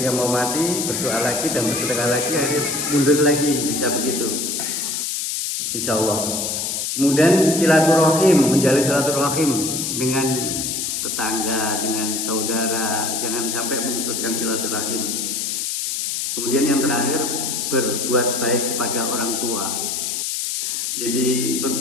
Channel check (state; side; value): noise; left; hiss, 2 dB below the sound